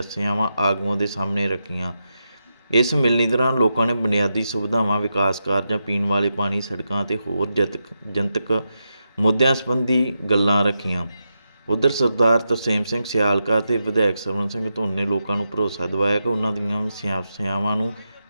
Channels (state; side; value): inverted; both; correlation -0.87